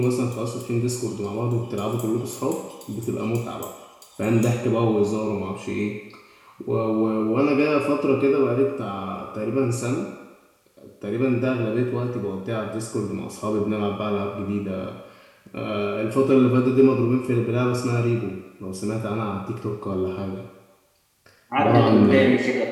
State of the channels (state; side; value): identical; both; correlation 1.00